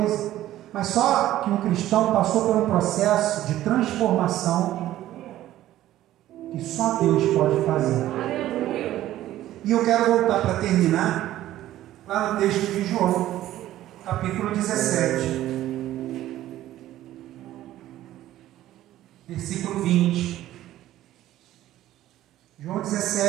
mas só que um cristão passou por um processo de transformação que só Deus pode fazer. E eu quero voltar para terminar lá no texto de João, capítulo 17, versículo 20. João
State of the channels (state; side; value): quieter; left; 13.9 dB